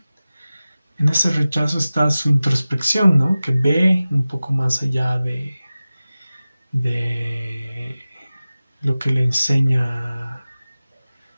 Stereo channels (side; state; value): both; inverted; correlation -0.96